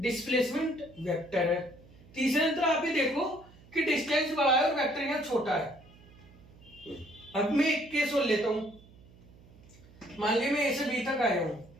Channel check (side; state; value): right; noise; hum, 24 dB below the sound